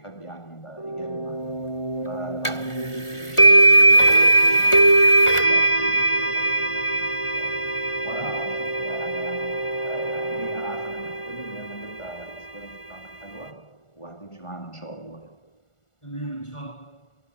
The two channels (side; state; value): right; late; 1.4 ms